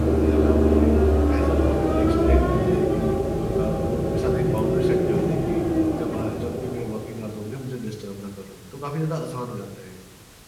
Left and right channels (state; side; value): identical; both; correlation 1.00